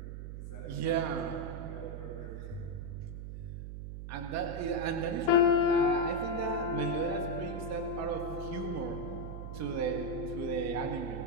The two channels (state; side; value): noise; right; hum, 7 dB below the sound